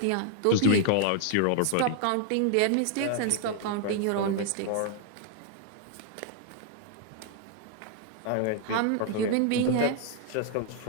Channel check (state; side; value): different; both; correlation 0.00